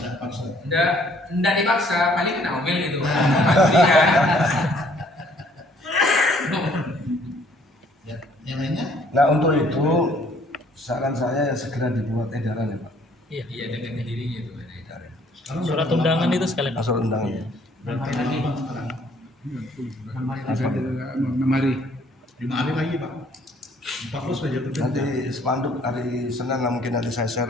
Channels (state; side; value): normal; both; correlation 0.61